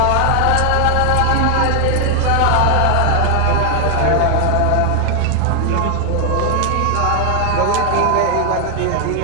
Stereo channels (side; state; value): both; different; correlation 0.00